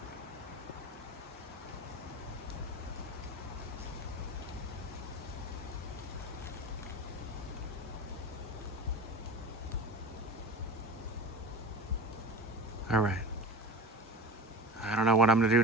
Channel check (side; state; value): both; normal; correlation 0.32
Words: All right. I don't know what I'm gonna do